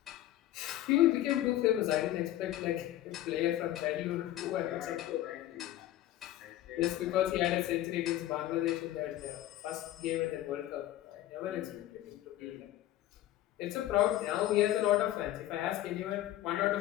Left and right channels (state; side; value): quieter; right; 13.8 dB